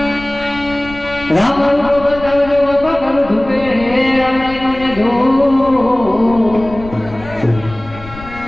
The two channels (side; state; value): left; noise; rumble, 16 dB below the sound